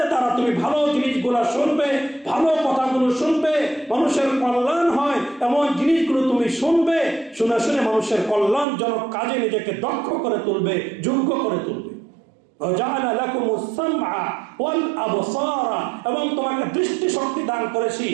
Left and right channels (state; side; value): drops out; left; at 8.7 s